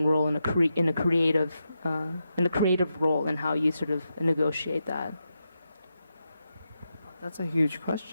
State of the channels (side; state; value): both; inverted; correlation -0.87